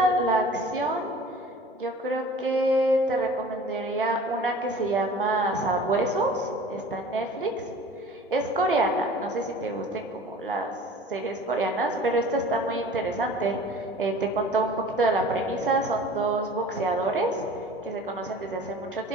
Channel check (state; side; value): normal; both; correlation 0.44